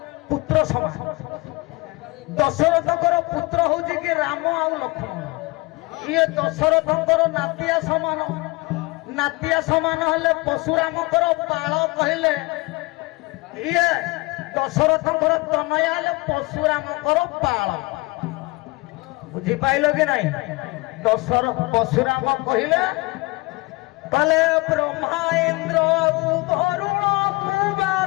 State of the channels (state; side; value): quieter; right; 23.8 dB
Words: ପୁତ୍ର ସମାନ। ଦଶରଥଙ୍କର ପୁତ୍ର ହଉଛି କି ରାମ ଆଉ ଲକ୍ଷ୍ମଣ। ଇଏ ଦଶରଥଙ୍କର ନାତିଆ ସମାନ। ନାତିଆ ସମାନ ହେଲେ ପଶୁରାମଙ୍କର ବାଳ କହିଲେ ଇଏ ଦଶରଥଙ୍କର ତନୟା ହେଲେ ପଶୁରାମଙ୍କର ବାଳ। ବୁଝିପାଇଲ କି ନାଇଁ? ପଶୁରାମ କହିଲେ କଲେ ବ୍ରହ୍ମା ଇନ୍ଦ୍ର ବରୁଣ